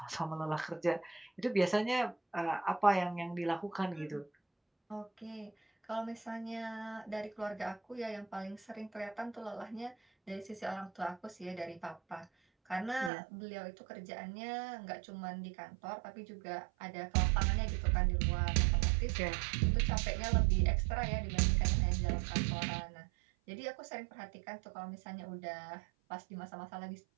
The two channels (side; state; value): left; drops out; at 13.1 s